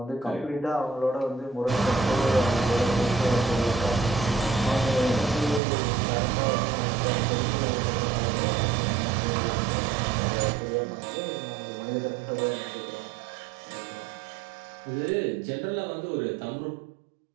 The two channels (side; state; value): left; drops out; at 5.6 s